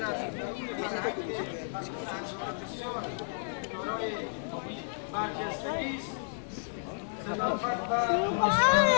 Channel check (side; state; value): right; silent; digital silence